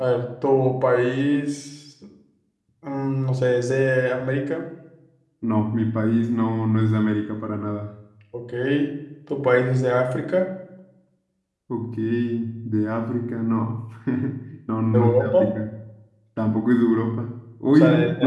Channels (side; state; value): both; identical; correlation 1.00